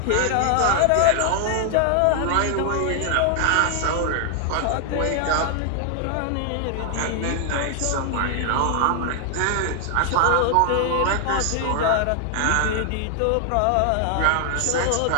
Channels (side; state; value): both; different; correlation 0.00